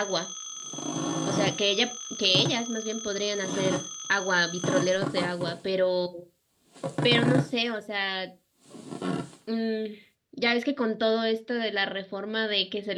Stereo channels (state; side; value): identical; both; correlation 1.00